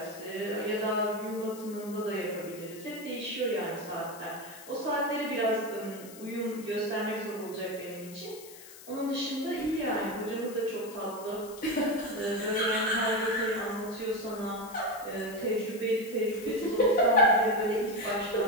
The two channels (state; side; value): noise; left; hiss, 17 dB below the sound